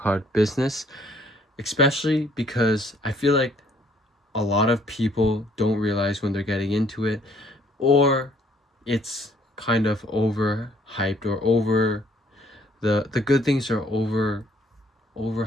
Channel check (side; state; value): both; normal; correlation 0.63